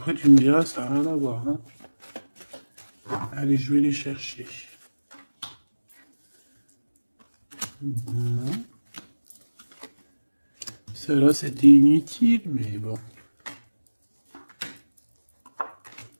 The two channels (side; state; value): both; inverted; correlation -1.00